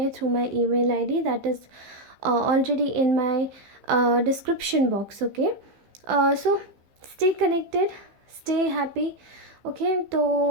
through my email ID that is already in my description box. Okay so stay connected, stay happy. Okay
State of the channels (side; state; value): left; late; 15 ms